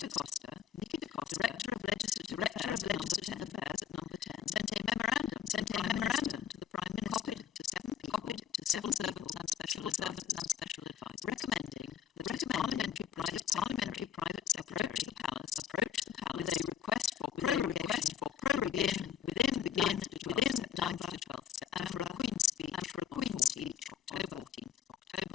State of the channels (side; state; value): right; quieter; 8.5 dB